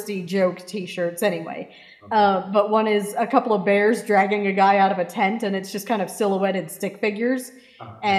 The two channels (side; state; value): both; identical; correlation 1.00